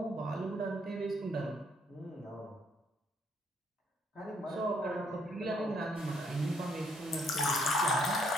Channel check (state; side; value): normal; both; correlation 0.69